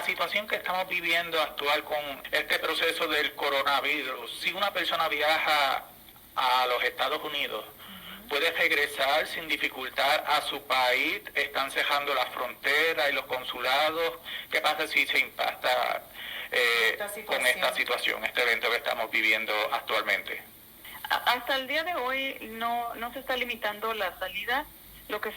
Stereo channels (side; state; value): both; identical; correlation 1.00